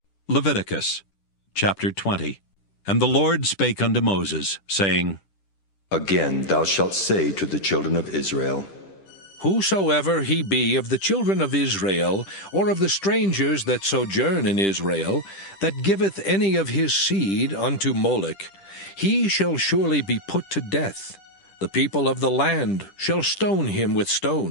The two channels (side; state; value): right; late; 10 ms